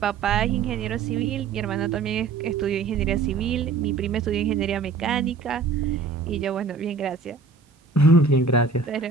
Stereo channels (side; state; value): left; quieter; 4.5 dB